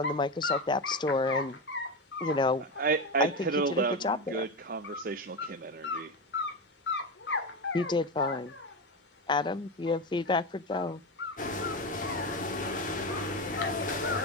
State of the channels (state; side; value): normal; both; correlation 0.17